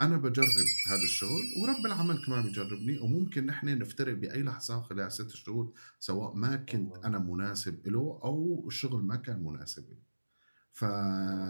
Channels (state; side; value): inverted; both; correlation -1.00